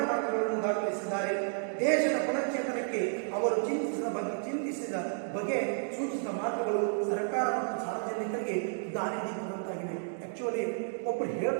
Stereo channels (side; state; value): left; silent; digital silence